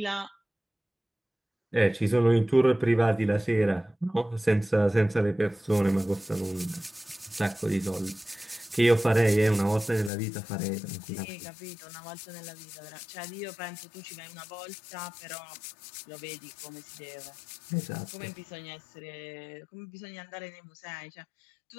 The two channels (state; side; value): drops out; right; at 10.1 s